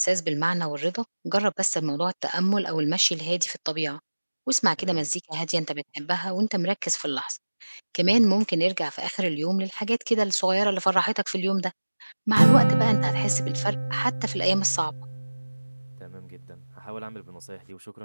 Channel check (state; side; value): inverted; both; correlation -1.00